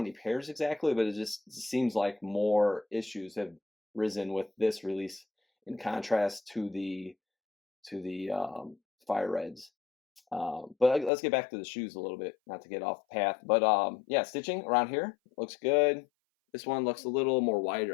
pairs exactly, but it just seems like more issues have risen with this release in contrast to the fire reds. But let's get back to the shoes a little bit, not to get off path. But yeah, stitching around here looks good. This one looks a little more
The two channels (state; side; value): drops out; right; at 11.1 s